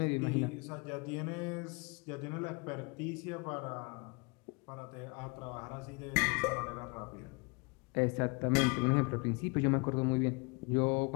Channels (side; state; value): right; quieter; 30.1 dB